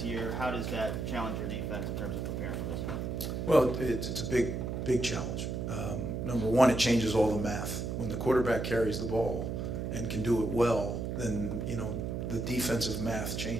year. How does that challenge your defense in terms of preparing for this one? Well, it's a big challenge. Number one, it changes all the math. When the quarterback carries the ball and can do it well, then the defensive math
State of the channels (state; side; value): noise; right; hum, 3 dB below the sound